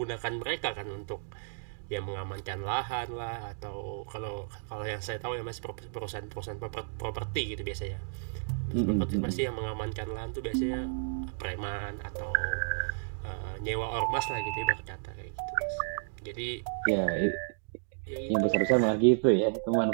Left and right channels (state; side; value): silent; left; digital silence